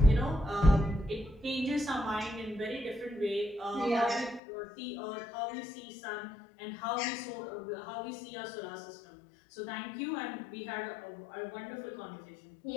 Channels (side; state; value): right; drops out; at 4.4 s